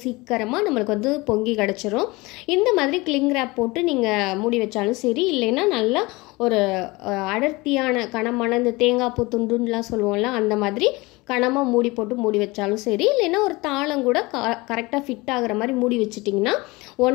சீக்கிரமாக நம்மளுக்கு வந்து பொங்கி கிடச்சிரும். இந்த மாதிரி கிளிங் ரேப் போட்டு நீங்கள் மூடி வச்சாலும் சரி, இல்லைன்னா நல்லா ஒரு அடர்த்தியான கனமான இந்த தேங்காய் பூ துண்டுலாம் சொல்லுவோம்ல அந்த மாதிரி கனமாக மூடி வச்சாலும் சரி, இல்லைன்னா ஒரு தாளம் கூட கரெக்டாக ஃபிட் ஆகிற மாதிரி மூடி வச்சிட்டிங்கன்னா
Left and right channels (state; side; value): quieter; right; 23.1 dB